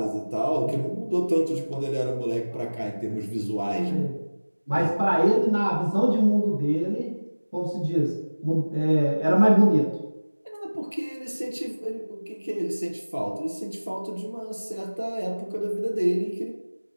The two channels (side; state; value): both; inverted; correlation -1.00